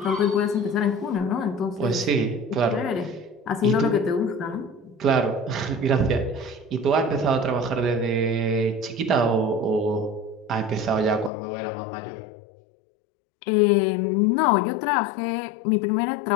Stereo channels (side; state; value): right; drops out; at 11.3 s